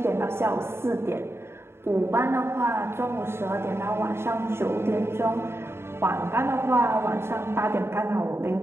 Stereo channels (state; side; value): late; left; 0.12 ms